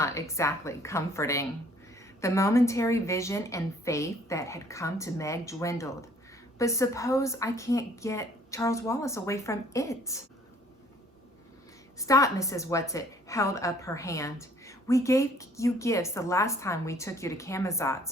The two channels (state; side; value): normal; both; correlation 0.58